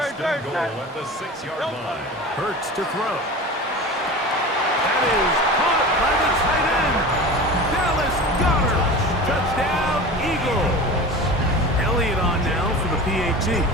and goal at the 6-yard line. Hurts to throw. That is caught by the tight end. Dallas Goedert. Touchdown, Eagles. Elliott on now for the PAT.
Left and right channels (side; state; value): both; normal; correlation 0.33